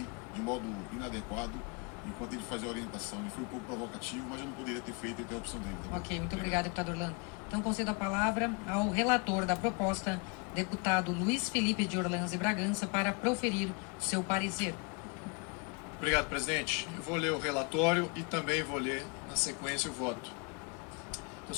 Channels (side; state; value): right; quieter; 32.8 dB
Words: de modo inadequado enquanto ele fazia a orientação. Ele foi um pouco provocativo, mas eu não poderia ter feito a interrupção dele. Tá? Ok, muito obrigado, deputado Orlando. Então, concedo a palavra ao relator da proposta, deputado Luiz Felipe de Orleans e Bragança, para proferir o seu parecer. Obrigado, presidente. Eu vou ler o relatório e também vou ler, na sequência, o voto. Então,